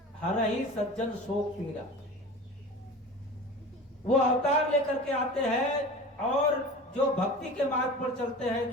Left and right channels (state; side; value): normal; both; correlation 0.36